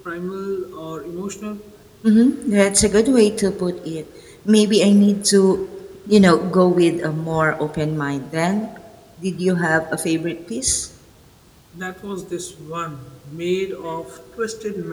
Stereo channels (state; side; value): identical; both; correlation 1.00